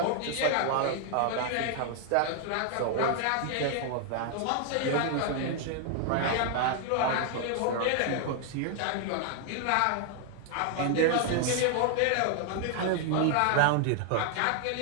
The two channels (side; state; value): both; different; correlation 0.00